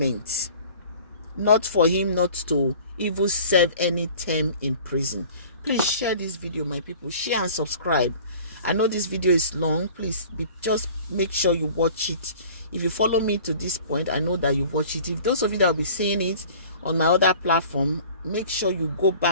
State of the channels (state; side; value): inverted; both; correlation -0.46